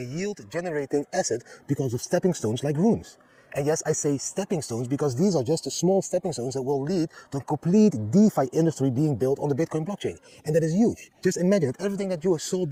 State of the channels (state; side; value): identical; both; correlation 1.00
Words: yield-generating asset because of stepping stones like runes. And yes, I say stepping stones because these are just the small stepping stones that will lead to a complete DeFi industry being built on the Bitcoin blockchain. And that is huge. Just imagine that everything that you saw